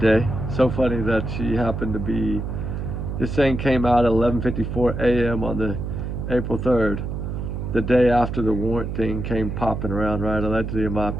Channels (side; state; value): right; noise; hum, 4 dB below the sound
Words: So funny that she happened to be, this thing came out at 11:54 a.m. on the April 3rd, the day after the warrant thing came popping around, right? Allegedly, in my